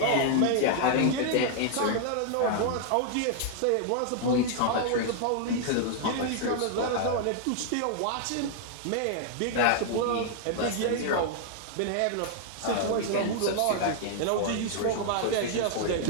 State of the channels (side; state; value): both; different; correlation 0.00